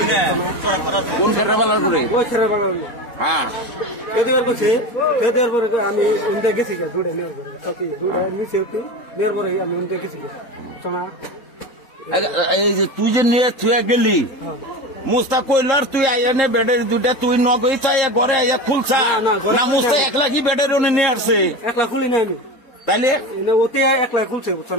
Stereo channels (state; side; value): late; right; 3.7 ms